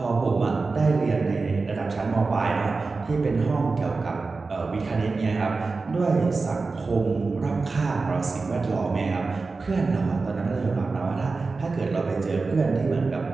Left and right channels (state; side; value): quieter; left; 4.0 dB